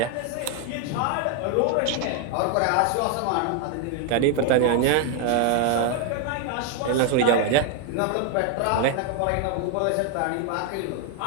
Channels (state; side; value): different; both; correlation 0.00